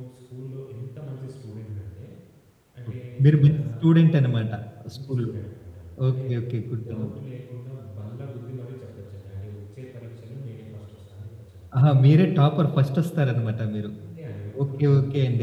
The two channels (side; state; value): both; identical; correlation 1.00